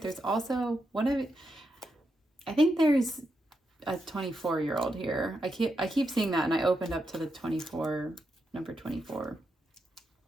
also I think there's a 24-year-old here. I keep seeing that, and I opened up to the 24, number 24.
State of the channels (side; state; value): both; normal; correlation 0.84